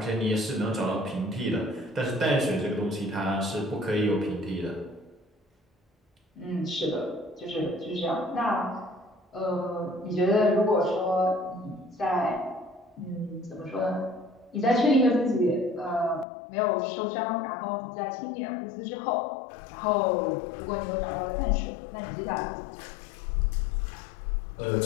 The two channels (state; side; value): drops out; right; at 16.2 s